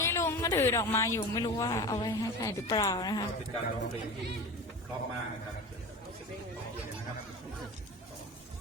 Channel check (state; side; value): normal; both; correlation 0.32